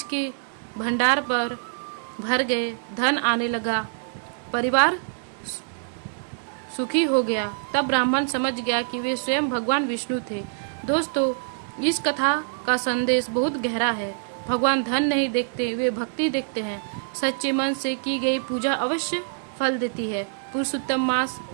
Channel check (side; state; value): left; silent; digital silence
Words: के भंडार पर भर गए, धन आने लगा, परिवार सुखी हो गया। तब ब्राह्मण समझ गया कि वे स्वयं भगवान विष्णु थे। दोस्तों, इस कथा का संदेश बहुत गहरा है। भगवान धन नहीं देखते, वे भक्ति देखते हैं। सच्चे मन से की गई पूजा अवश्य फल देती है। पुरुषोत्तम मास